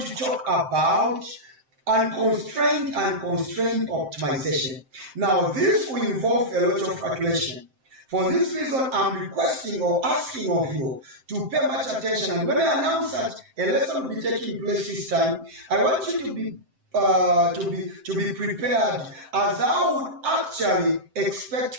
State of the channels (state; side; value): late; left; 7.7 ms